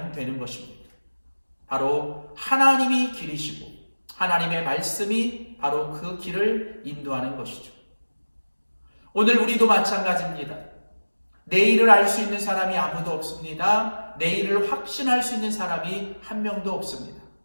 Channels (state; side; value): inverted; both; correlation -1.00